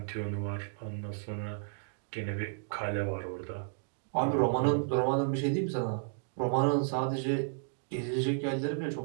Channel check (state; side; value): silent; left; digital silence